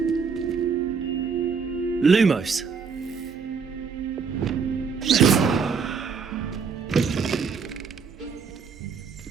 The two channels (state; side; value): quieter; left; 5.7 dB